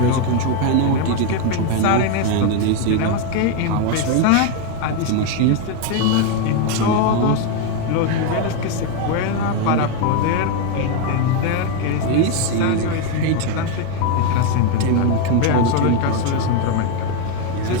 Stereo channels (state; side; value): different; both; correlation 0.01